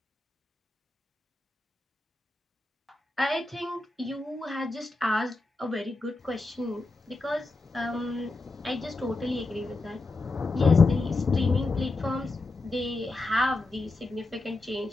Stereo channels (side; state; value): right; quieter; 3.2 dB